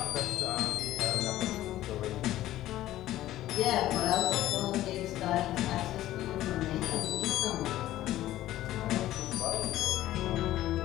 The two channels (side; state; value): right; quieter; 14.4 dB